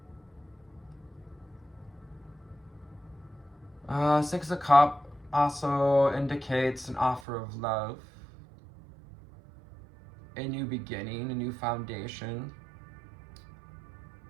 Six of Cups also indicates an offer of love, a new beginning, a new foundation.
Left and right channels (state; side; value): drops out; left; at 7.2 s